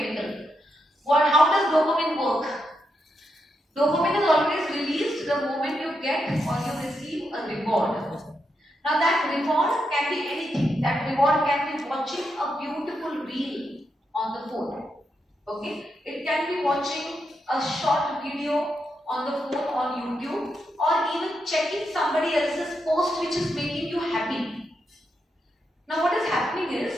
How does dopamine work? Dopamine is always released the moment you get or you receive a reward. Now that reward can be anything. That reward can be watching a beautiful reel on the phone. Okay? It can be watching a short video on the phone on YouTube, or even checking somebody else's post which is making you happy. Now what is happening is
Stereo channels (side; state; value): both; normal; correlation 0.83